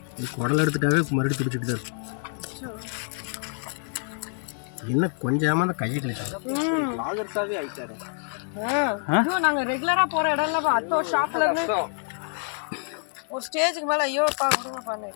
குடல் எடுத்துட்டாவே மறுபடியும் பிடிச்சிட்டு தான் இருக்கும் என்ன கொஞ்சமா அந்த கையை கிழிச்சு லாகர்ஸாவே ஆயிட்டாரு நாங்க ரெகுலரா போற இடம்ல அத்தோ ஷாப்ல இருந்து ஒரு ஸ்டேஜுக்கு மேல ஐயோ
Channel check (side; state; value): right; silent; 56 dB below the other